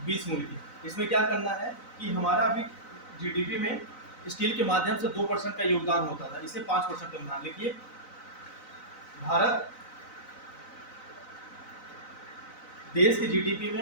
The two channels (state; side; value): late; right; 4.0 ms